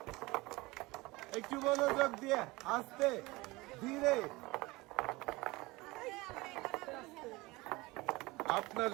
একটু মনোযোগ দিয়ে, আস্তে ধীরে। আপনার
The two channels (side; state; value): left; quieter; 22.0 dB